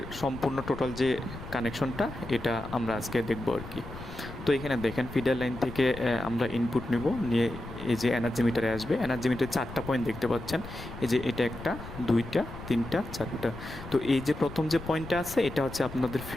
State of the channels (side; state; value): left; noise; rumble, 12 dB below the sound